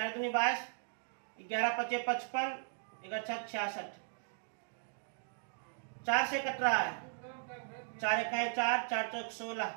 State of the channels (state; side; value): silent; left; digital silence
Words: दूनी 22, 11 पचे 55, 11 छक 66, 4 से कट रहा है, 4 इकाई 4, 4 चौक 16,